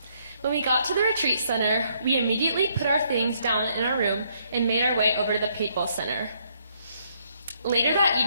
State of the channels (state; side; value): inverted; both; correlation -0.71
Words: When we got to the retreat center, we immediately put our things down in our room and made our way over to the paintball center. Later that